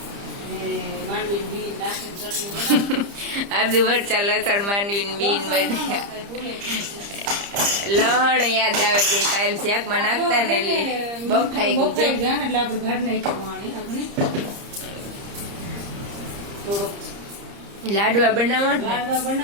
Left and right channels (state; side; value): late; left; 30 ms